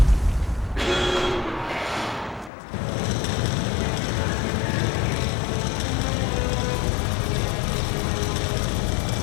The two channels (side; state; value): right; drops out; at 2.5 s